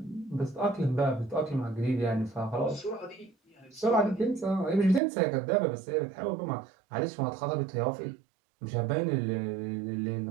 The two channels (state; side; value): drops out; left; at 5.0 s